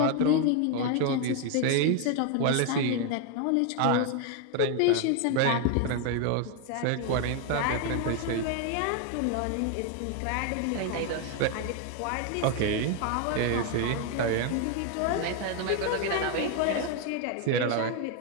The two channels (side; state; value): both; different; correlation 0.01